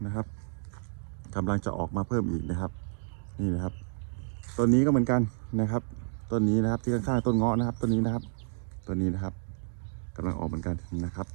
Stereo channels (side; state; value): left; silent; 58 dB below the other